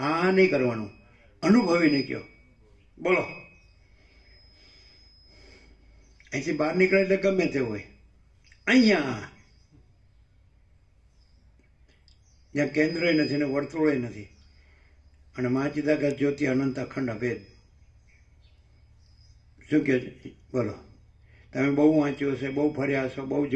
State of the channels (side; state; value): both; identical; correlation 1.00